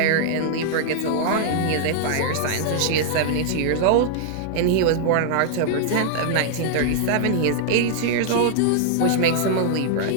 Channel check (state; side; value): different; both; correlation -0.01